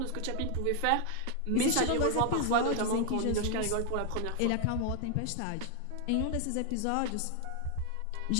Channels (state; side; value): different; both; correlation 0.00